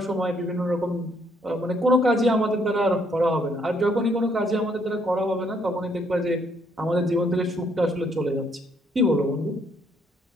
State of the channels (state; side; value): normal; both; correlation 0.69